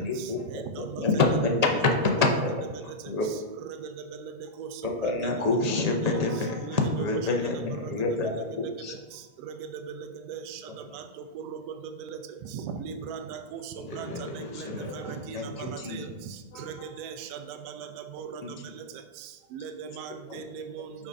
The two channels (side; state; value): left; late; 1.8 ms